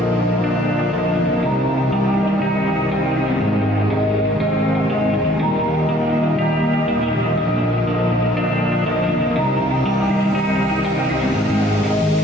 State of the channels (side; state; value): both; normal; correlation 0.60